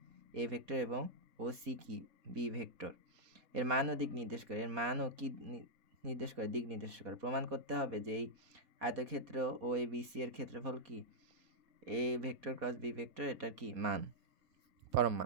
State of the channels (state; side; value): late; left; 4.2 ms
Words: A ভেক্টর এবং OC কি? B vector. এর মান ও দিক নির্দেশ করে। এর মান ও কি নির্দেশ করে? দিক নির্দেশ করে। প্রমাণ করতে হবে যে এই আয়তক্ষেত্র OABC এর ক্ষেত্রফল কি? A vector cross B vector এটার কি? মান। পরম